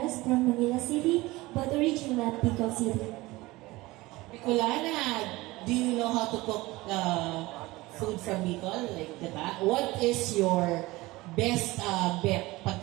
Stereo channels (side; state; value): left; quieter; 20.3 dB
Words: from Manila City, but originally at Bicol City. Bicolana, do you know how to cook food from Bicol? Like, diba? What is your best bet